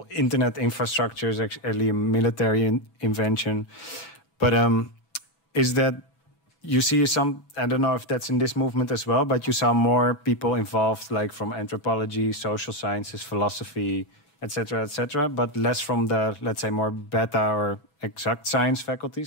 internet infrastructure is actually a military invention. But is that you see some, I don't know if that's in this movement as well, but you saw more people involved, like from anthropology, social sciences, philosophy, etc., but less from the, let's say, more beta or exact science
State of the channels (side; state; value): right; late; 7.5 ms